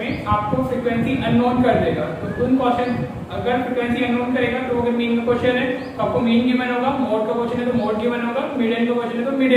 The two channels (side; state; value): both; identical; correlation 1.00